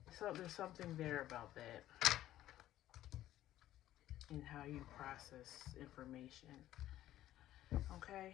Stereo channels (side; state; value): right; quieter; 13.5 dB